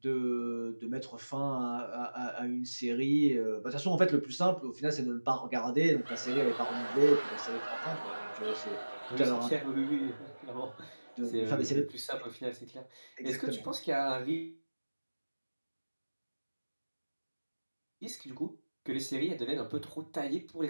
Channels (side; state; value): both; inverted; correlation -1.00